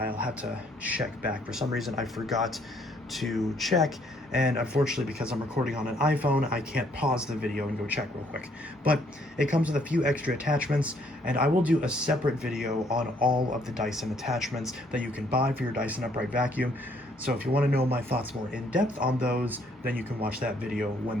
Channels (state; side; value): normal; both; correlation 0.66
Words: have to check back. For some reason I forgot to check, and unfortunately because I'm recording on an iPhone, I can't pause the video and go check real quick. But it comes with a few extra attachments, and I will do a separate video on all of the Dyson attachments that you can buy for your Dyson upright vacuum. So if you want to know my thoughts more in depth on those, then you can watch that video when